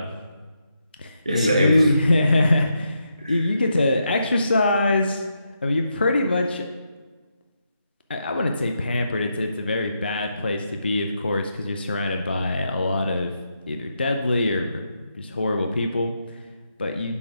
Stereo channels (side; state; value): both; inverted; correlation -0.82